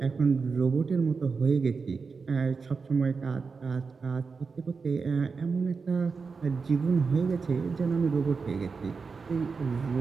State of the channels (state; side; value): quieter; left; 4.9 dB